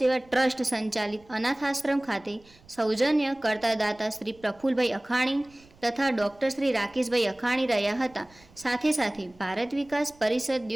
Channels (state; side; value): noise; right; rumble, 28 dB below the sound